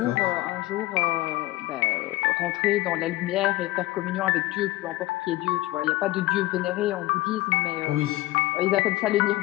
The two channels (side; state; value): right; quieter; 17.8 dB